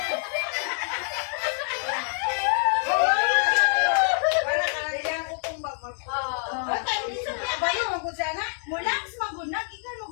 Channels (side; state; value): right; silent; 57 dB below the other